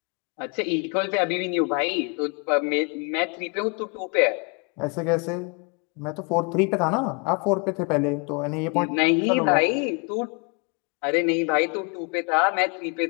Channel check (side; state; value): right; quieter; 34.0 dB